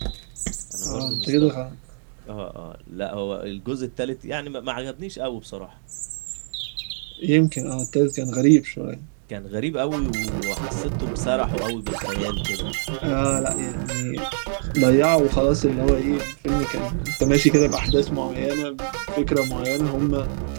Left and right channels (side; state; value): left; silent; digital silence